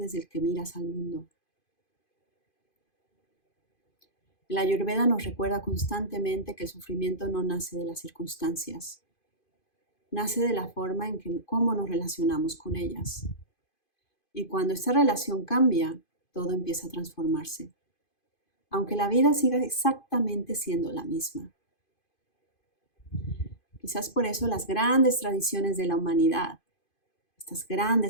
el que miras al mundo. La Ayurveda nos recuerda constantemente que el sufrimiento no nace de las circunstancias, nace de la forma en que cómo nos relacionamos con ellas. Y cuando esta relación cambia, todo empieza a transformarse, aunque la vida siga exactamente siendo la misma. Quizás por eso las grandes tradiciones de la humanidad, estas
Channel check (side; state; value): right; late; 2.5 ms